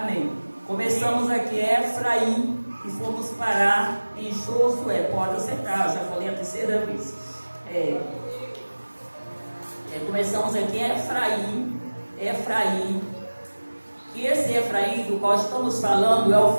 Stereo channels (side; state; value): both; inverted; correlation -1.00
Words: Começamos aqui Efraim e fomos parar em Josué. Pode acertar, já falei a terceira vez. Começamos aqui Efraim. E esse Efraim do qual estamos falando é